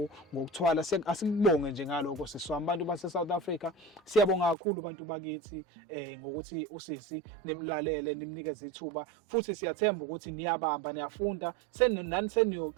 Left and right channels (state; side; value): drops out; left; at 4.5 s